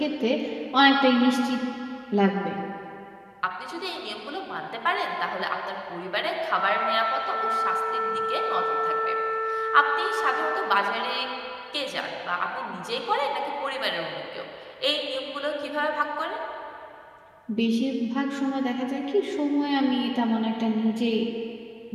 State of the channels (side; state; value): both; identical; correlation 1.00